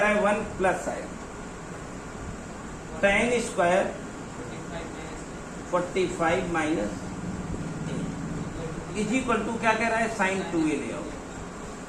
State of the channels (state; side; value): identical; both; correlation 1.00